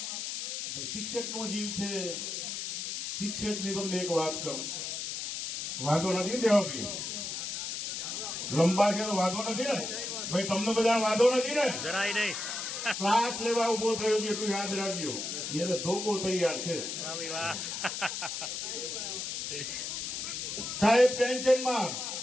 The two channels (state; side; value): noise; left; hiss, 4 dB below the sound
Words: શિક્ષકનો જીવ છે. શિક્ષકની તમને એક વાત કહું, વાંધો નથી દેવાભાઈ, લંબા છે તો વાંધો નથી ને ભાઈ, તમને બધા વાંધો નથી ને? જરાય નહીં. ક્લાસ લેવા ઉભો થયો છે એટલું યાદ રાખજો, એને ધોકો તૈયાર છે. વાહ. સાહેબ ટેન્શનમાં,